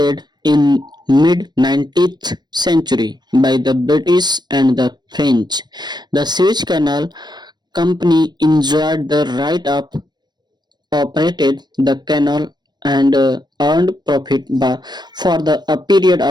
in mid-19th century by the British and the French. The Suez Canal Company enjoyed the right of operated the canal and earned profit for a period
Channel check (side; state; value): left; late; 0.21 ms